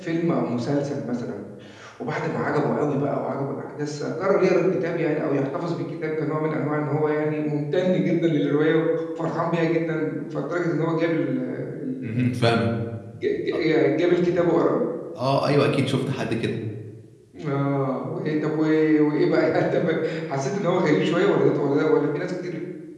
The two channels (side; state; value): both; identical; correlation 1.00